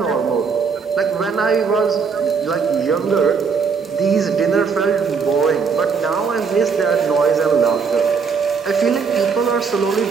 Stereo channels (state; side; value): quieter; left; 5.6 dB